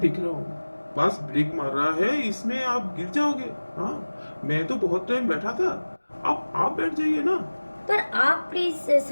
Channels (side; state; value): both; inverted; correlation -1.00